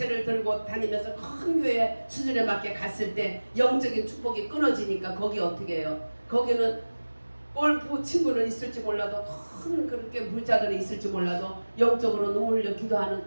들고 다니면서 큰 교회 수준에 맞게 갔을 때 영적인 축복이 끊어지니까 거기 어떻게 해요? 거기는 골프 친구는 있을지 몰라도 큰 그렇게 부자들이 있을지 몰라도 영적으로 눈물 흘려 기도하는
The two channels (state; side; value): inverted; both; correlation -1.00